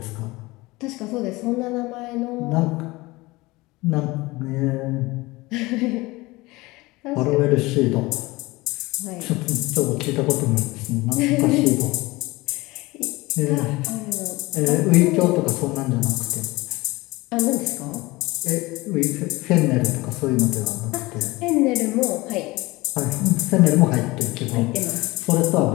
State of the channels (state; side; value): quieter; right; 21.5 dB